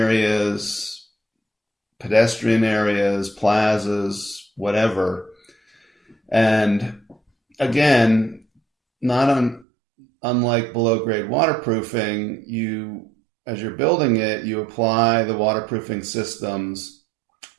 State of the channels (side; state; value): left; drops out; at 9.7 s